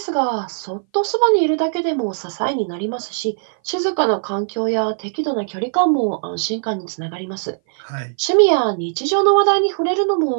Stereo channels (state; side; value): silent; left; 59 dB below the other